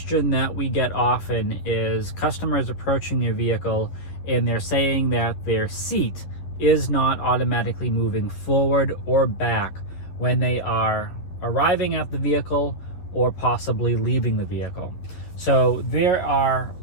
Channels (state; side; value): late; right; 12 ms